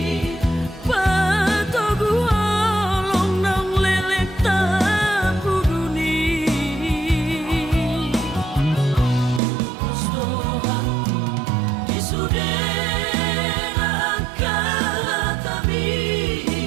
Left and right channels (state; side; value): drops out; left; at 9.4 s